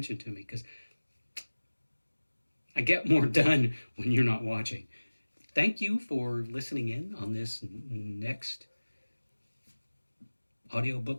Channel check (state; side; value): inverted; both; correlation -1.00